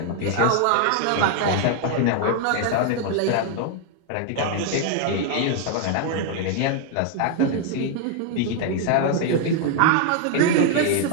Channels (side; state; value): both; different; correlation 0.00